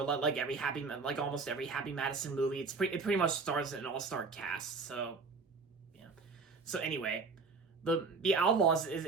almost every Happy Madison movie. It pretty much stars an all-star cast. So anyway, the Outlaws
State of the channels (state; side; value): quieter; left; 4.4 dB